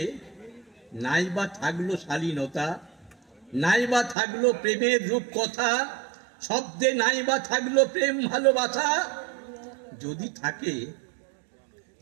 নাইবা থাকলো শালীনতা, নাইবা থাকলো প্রেমের রূপ কথা, শব্দে নাইবা থাকলো প্রেম ভালোবাসা, যদি থাকে,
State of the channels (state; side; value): drops out; left; at 4.2 s